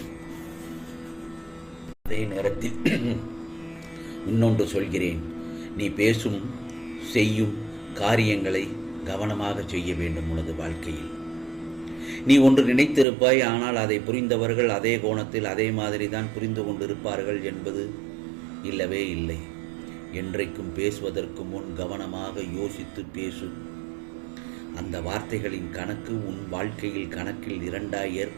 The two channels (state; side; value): drops out; left; at 13.1 s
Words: அதே நேரத்தில் இன்னொன்று சொல்கிறேன். நீ பேசும் செய்யும் காரியங்களை கவனமாக செய்ய வேண்டும். உனது வாழ்க்கையில் நீ ஒன்று நினைத்திருப்பாய், ஆனால் அதை புரிந்தவர்கள் அதே கோணத்தில் அதே மாதிரி தான் புரிந்து கொண்டிருப்பார்கள் என்பது இல்லவே இல்லை. என்றைக்கும் பேசுவதற்கு முன் கவனமாக யோசித்து பேசு. அந்த வார்த்தைகளின் கணக்கு உன் வாழ்க்கையில் கணக்கில் இரண்டாய்